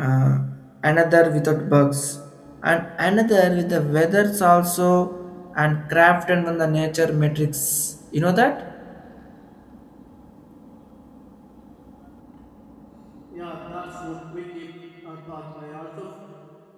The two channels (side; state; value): both; identical; correlation 1.00